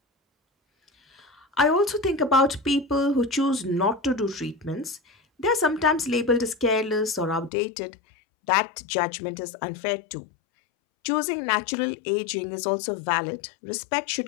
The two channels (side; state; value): right; drops out; at 7.5 s